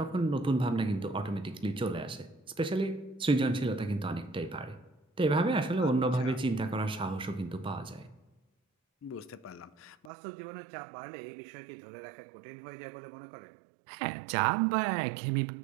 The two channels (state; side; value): drops out; left; at 10.1 s